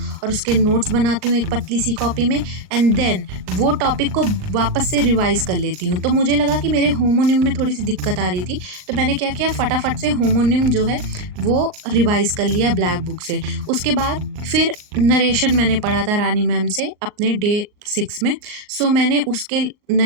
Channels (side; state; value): left; late; 39 ms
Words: और उसके नोट्स बनाती हूँ एक पतली सी कॉपी में एंड देन वो टॉपिक को वापस से रिवाइज़ कर लेती हूँ। तो मुझे लगा कि मेरे होमोनिम में थोड़ी सी दिक्कत आ रही थी, तो मैंने क्या किया, फटाफट से होमोनिम जो है वो रिवाइज़ कर लिया ब्लैक बुक से। उसके बाद फिर नरेशन मैंने पढ़ा था रानी मैम से अपने डे 6 में। सो मैंने उसके